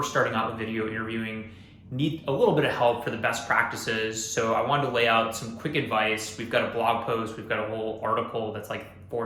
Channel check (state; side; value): identical; both; correlation 1.00